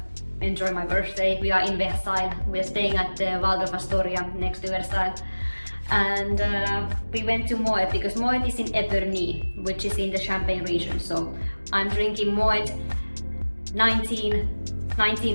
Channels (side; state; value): both; inverted; correlation -1.00